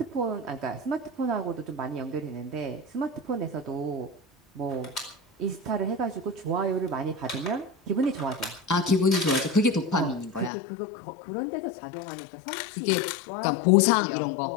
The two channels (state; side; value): drops out; right; at 10.5 s